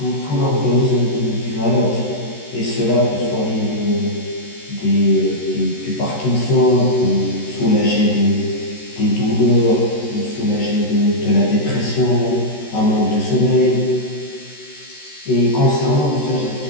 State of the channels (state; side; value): late; right; 13 ms